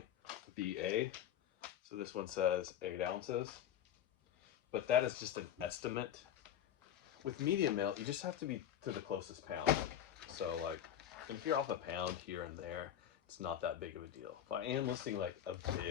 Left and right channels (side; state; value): right; quieter; 10.3 dB